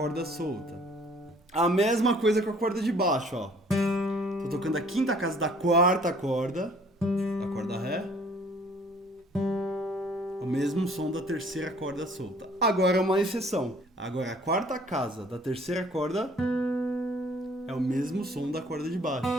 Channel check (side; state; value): both; normal; correlation 0.56